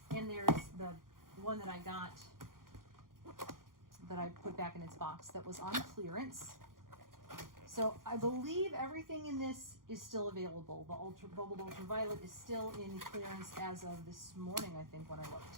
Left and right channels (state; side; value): late; left; 0.91 ms